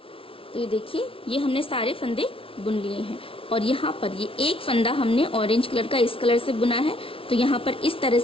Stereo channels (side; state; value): right; late; 0.26 ms